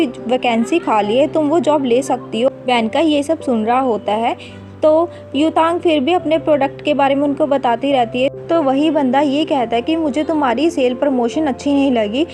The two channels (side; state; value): both; identical; correlation 1.00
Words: वैकेंसी खाली है, तुम वो जॉब ले सकती हो। वैनकाई ये सब सुन रहा होता है। तो युतांग फिर भी अपने प्रोडक्ट के बारे में उनको बताती रहती है। तो वही बंदा ये कहता है कि मुझे तुम्हारी सेल प्रमोशन अच्छी नहीं लगी।